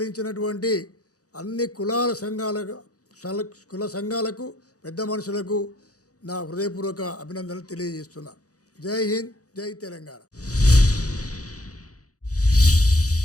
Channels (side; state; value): right; late; 0.66 ms